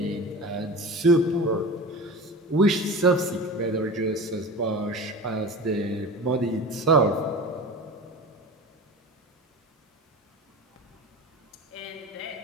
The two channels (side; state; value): both; normal; correlation 0.32